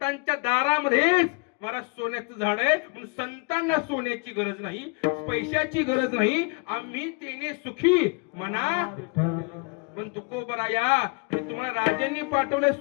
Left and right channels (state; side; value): quieter; right; 32.6 dB